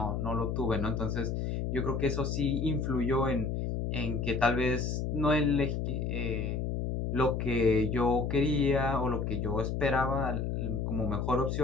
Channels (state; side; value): noise; left; hum, 1 dB below the sound